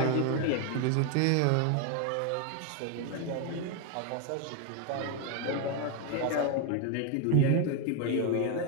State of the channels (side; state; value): both; different; correlation 0.01